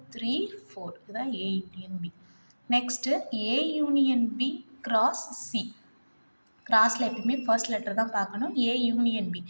3, 4 இதுதான் A union B. Next A union B cross C. கிராஸில் எப்பயுமே ஃபர்ஸ்ட் லெட்டர் தான் பார்க்கணும். A union B.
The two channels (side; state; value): both; inverted; correlation -1.00